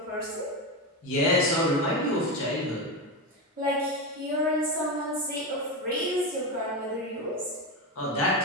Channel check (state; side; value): normal; both; correlation 0.15